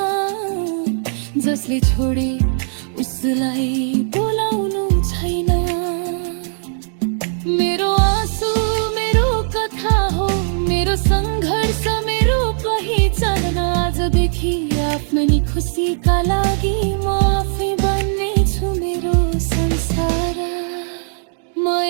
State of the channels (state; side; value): silent; left; digital silence